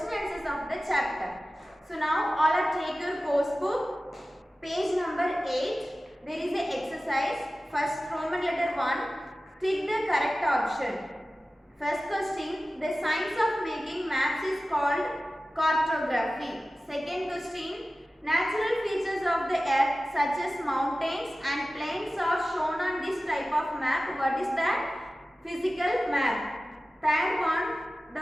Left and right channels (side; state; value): both; normal; correlation 0.96